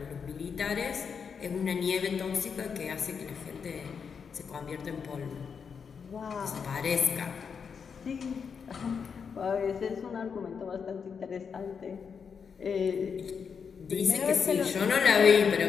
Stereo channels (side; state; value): right; quieter; 6.3 dB